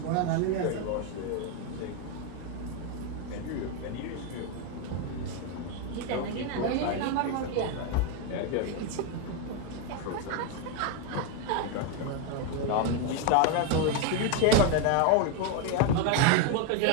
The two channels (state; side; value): different; both; correlation 0.01